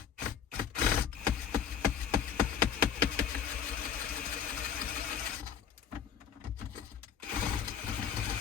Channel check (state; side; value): quieter; right; 8.0 dB